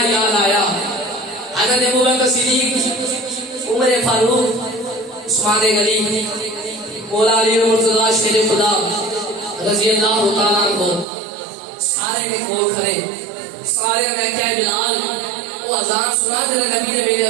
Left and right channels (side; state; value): left; drops out; at 11.1 s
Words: یاد آیا حضرت ابوبکر صدیق عمر فاروق عثمان غنی مولا علی مرتضی شیر خدا رضی اللہ تعالیٰ عنہ سارے کے کول کھڑے سارے نے کیا بلال وہ اذان سنا دے نبی نے میرے